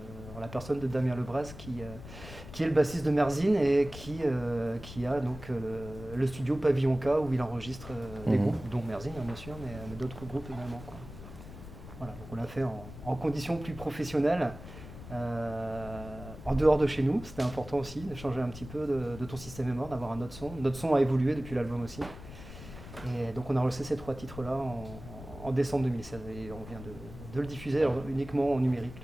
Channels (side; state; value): left; noise; rumble, 14 dB below the sound